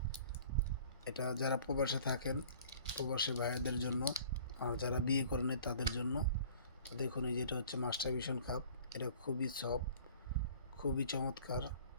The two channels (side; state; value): both; inverted; correlation -0.49